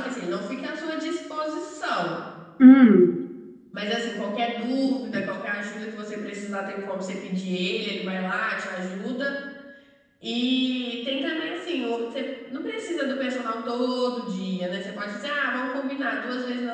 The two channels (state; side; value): identical; both; correlation 1.00